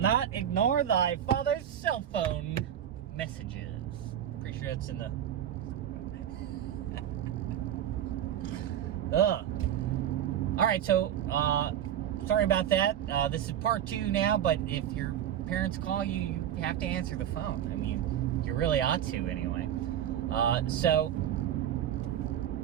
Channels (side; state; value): left; quieter; 10.3 dB